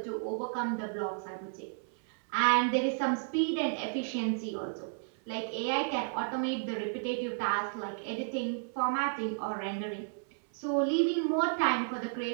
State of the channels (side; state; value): left; silent; 56 dB below the other